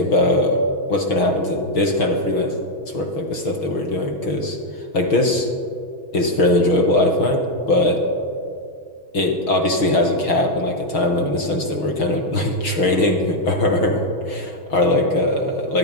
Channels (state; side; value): late; right; 6.3 ms